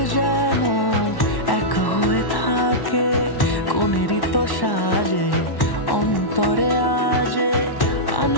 যেন এক হয়ে থাকে। কোনেরই তো সাজে অন্তরে আজে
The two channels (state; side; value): late; right; 1.1 ms